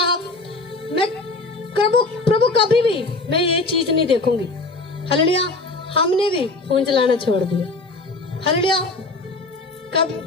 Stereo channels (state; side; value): quieter; right; 3.2 dB